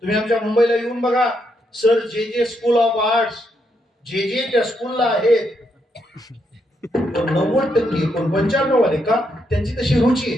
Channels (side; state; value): both; normal; correlation 0.79